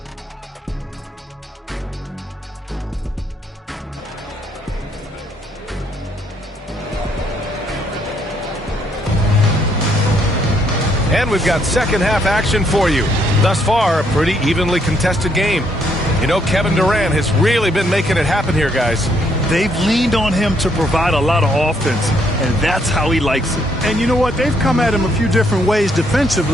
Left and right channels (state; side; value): normal; both; correlation 0.71